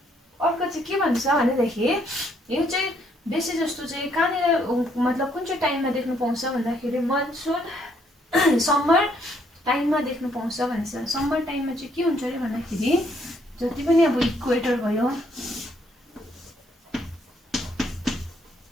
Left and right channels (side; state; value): both; normal; correlation 0.69